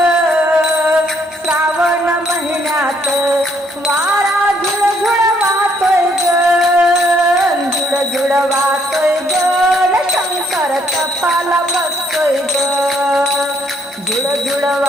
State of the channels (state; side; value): normal; both; correlation 0.69